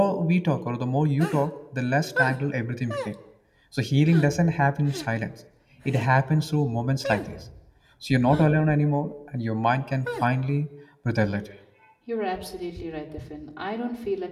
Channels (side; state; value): both; identical; correlation 1.00